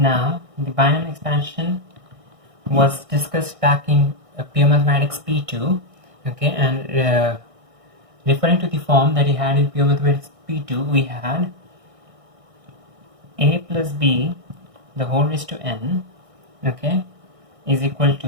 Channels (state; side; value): late; left; 1.6 ms